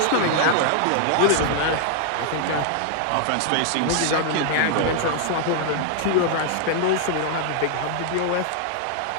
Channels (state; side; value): different; both; correlation 0.00